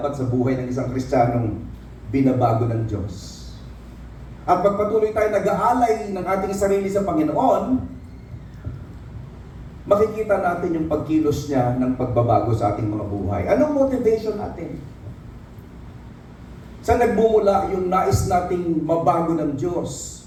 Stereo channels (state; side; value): identical; both; correlation 1.00